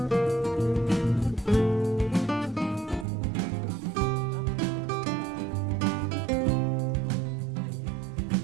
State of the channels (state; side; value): drops out; left; at 3.1 s